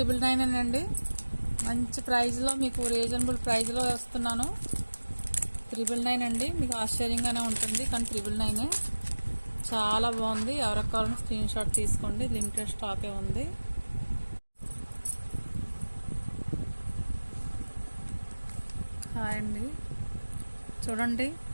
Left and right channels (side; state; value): both; inverted; correlation -1.00